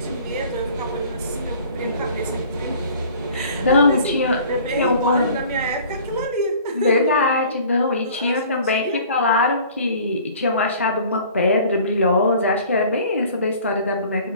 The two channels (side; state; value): both; inverted; correlation -0.49